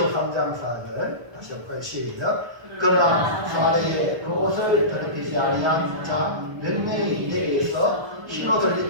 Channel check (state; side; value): late; left; 1.3 ms